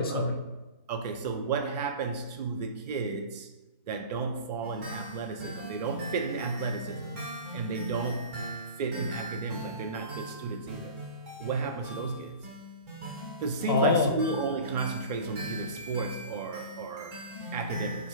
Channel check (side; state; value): both; inverted; correlation -0.37